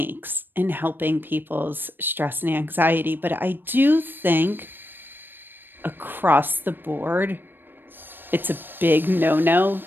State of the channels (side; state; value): left; late; 0.095 ms